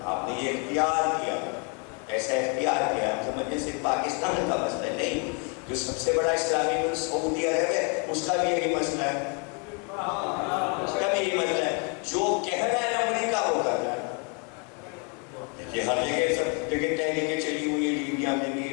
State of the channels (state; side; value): quieter; right; 36.5 dB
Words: آپ نے یہ اختیار کیا، ایسا اختیار کیا۔ ہم سمجھیں صرف پاکستان کا مسئلہ نہیں، جو سب سے بڑا اسلامی ملک سعودی عرب ہے اس کا بھی یہی مسئلہ ہے، اس کا بھی یہی مسئلہ ہے۔ جو کہہ رہا ہے امریکہ وہ کر رہا ہے۔ دیکھیے ہر جگہ سب جگہ تحریکیں چلی ہوئی ہیں، لیبیا میں بھی